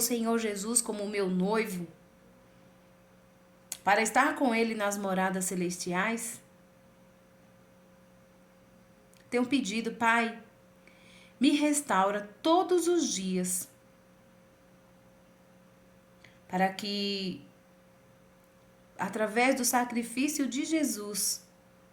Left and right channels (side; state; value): both; identical; correlation 1.00